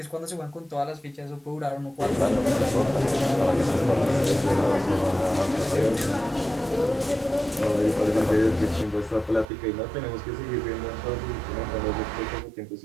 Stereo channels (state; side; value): drops out; left; at 9.5 s